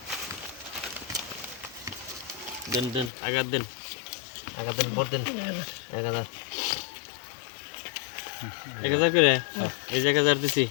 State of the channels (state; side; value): drops out; right; at 3.1 s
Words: দেন দেন আগার দেন ভোট দেন 1000 করে এই যে 1000 দিছি